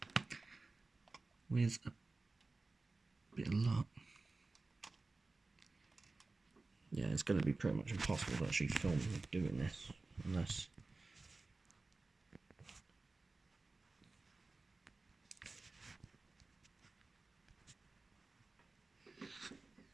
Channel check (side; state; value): left; quieter; 3.5 dB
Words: with a bit of luck, yeah, it's going to be pretty much impossible to actually film doing this unless